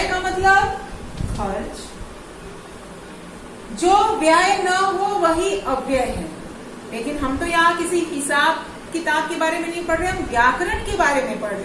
का मतलब खर्च। जो व्यय न हो वही अव्यय है। लेकिन हम तो यहाँ किसी हिसाब किताब के बारे में नहीं पढ़ रहे, हम व्याकरण के बारे में पढ़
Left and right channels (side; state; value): both; identical; correlation 1.00